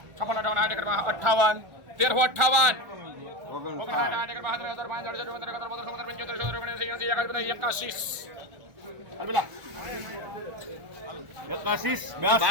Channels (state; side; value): late; left; 1.4 ms